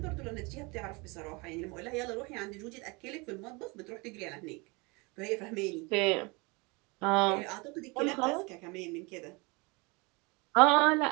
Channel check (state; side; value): quieter; left; 27.5 dB